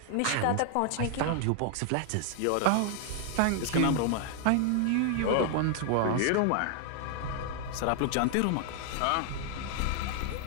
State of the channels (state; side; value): different; both; correlation 0.00